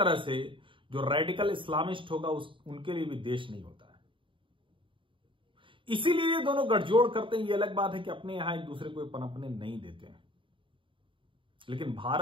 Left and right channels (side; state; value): left; late; 0.25 ms